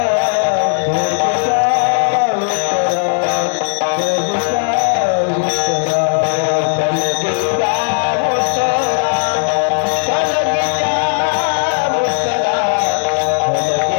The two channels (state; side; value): silent; right; digital silence